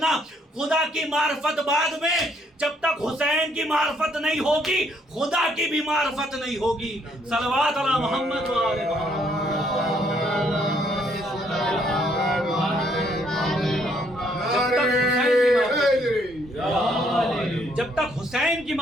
خدا کی معرفت بعد میں، جب تک حسین کی معرفت نہیں ہوگی خدا کی بھی معرفت نہیں ہوگی۔ صلوات علی محمد و آل محمد۔ جب تک حسین کی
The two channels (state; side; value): normal; both; correlation 0.68